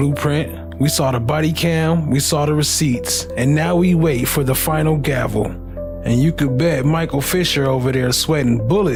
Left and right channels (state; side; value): identical; both; correlation 1.00